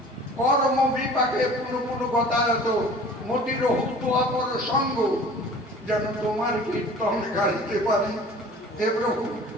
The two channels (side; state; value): both; normal; correlation 0.45